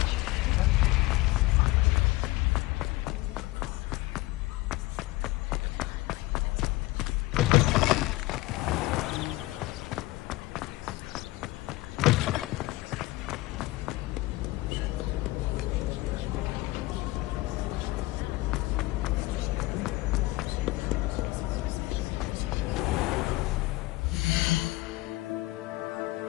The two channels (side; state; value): right; quieter; 19.9 dB